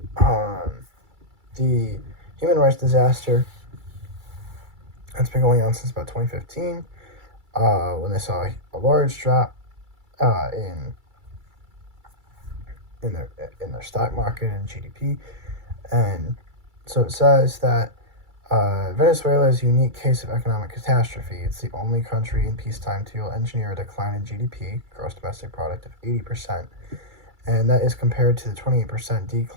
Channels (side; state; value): left; late; 2.3 ms